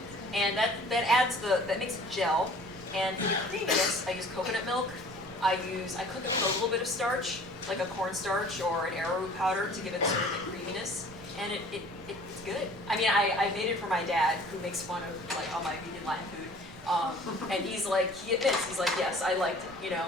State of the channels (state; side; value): noise; right; rumble, 22 dB below the sound